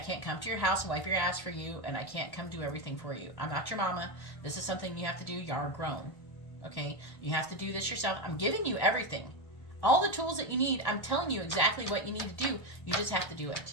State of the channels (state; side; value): late; right; 1.1 ms